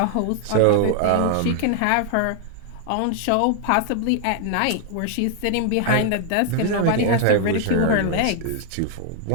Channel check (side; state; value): both; different; correlation 0.00